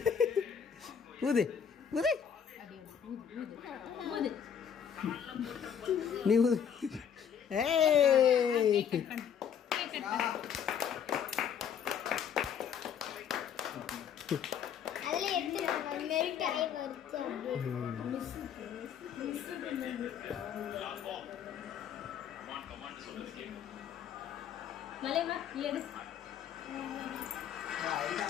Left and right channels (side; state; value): right; quieter; 8.0 dB